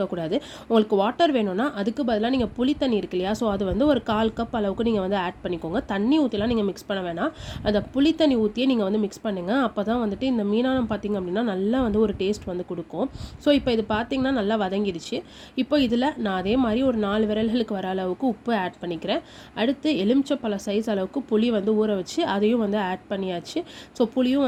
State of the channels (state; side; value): identical; both; correlation 1.00